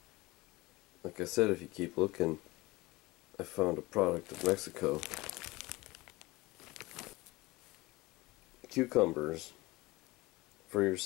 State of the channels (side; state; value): right; quieter; 21.1 dB